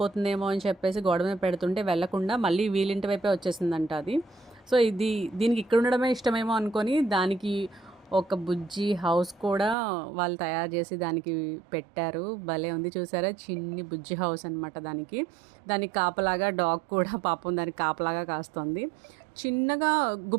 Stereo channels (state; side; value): drops out; left; at 9.8 s